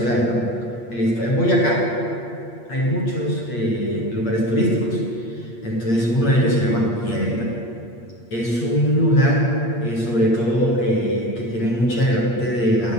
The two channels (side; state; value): right; late; 8.6 ms